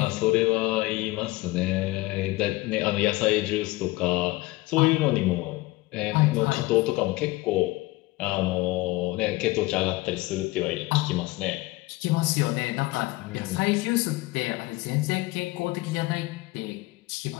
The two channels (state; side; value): quieter; right; 20.5 dB